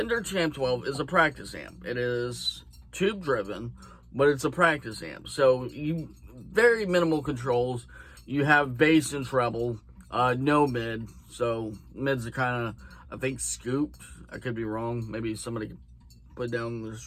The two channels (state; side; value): identical; both; correlation 1.00